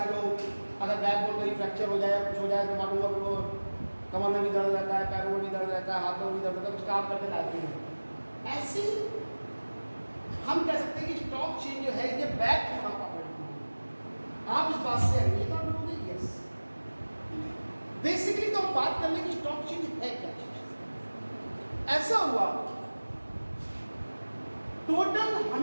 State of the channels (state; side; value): inverted; both; correlation -1.00